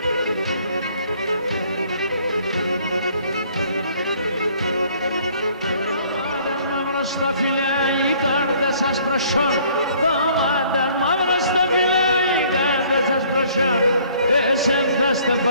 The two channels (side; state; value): both; inverted; correlation -0.59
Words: Στα φιλιά οι κάρτες σας προσόν, το μάταν μαύρο στα φιλιά οι κάρτες σας προσιά, εσέν θα